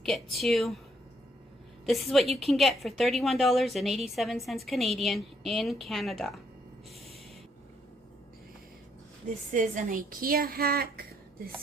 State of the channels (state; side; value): normal; both; correlation 0.72